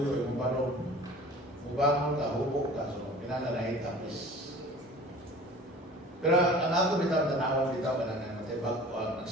yung banong. Mubangon ka, hubok ka. So, pinananahin tapos. Pero ang ako bitaw, tanawan bitaw, Natay bago ang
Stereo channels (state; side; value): normal; both; correlation 0.43